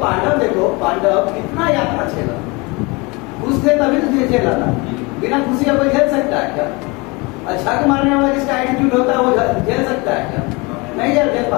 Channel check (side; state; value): right; quieter; 26.5 dB